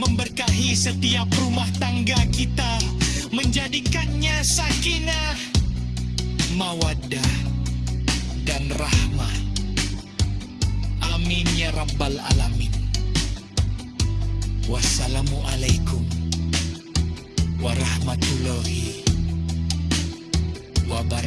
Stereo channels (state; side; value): identical; both; correlation 1.00